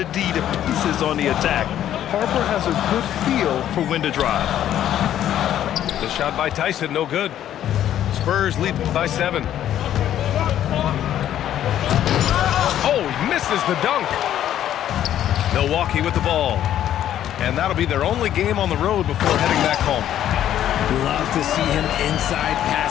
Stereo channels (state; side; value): quieter; right; 11.3 dB